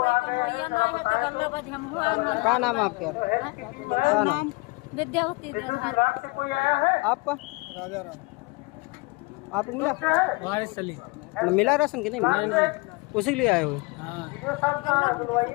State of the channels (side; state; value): right; quieter; 26.8 dB